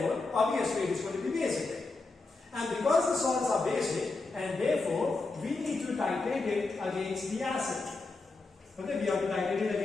obviously it is going to be basic. And because the salts are basic, and therefore we need to titrate it against the acid. Okay, we have to titrate it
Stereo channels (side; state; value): right; quieter; 3.6 dB